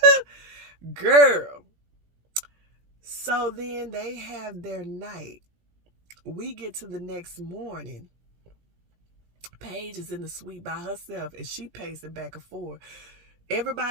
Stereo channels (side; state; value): left; late; 17 ms